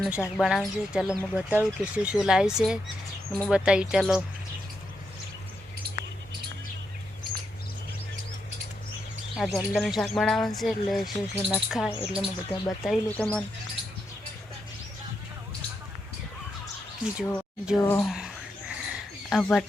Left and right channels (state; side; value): normal; both; correlation 0.83